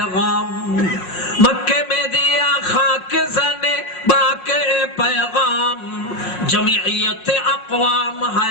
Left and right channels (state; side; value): late; right; 5.5 ms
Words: मक्के में दिया खाके जने बाके ए पैगाम, जमीयत अक़वाम है